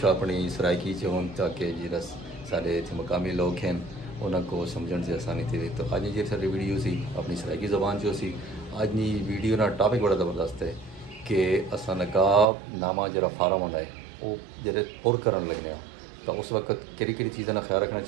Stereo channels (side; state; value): left; drops out; at 12.5 s